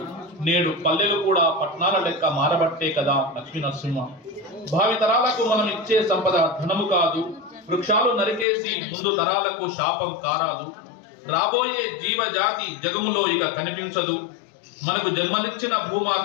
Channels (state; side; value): drops out; right; at 8.5 s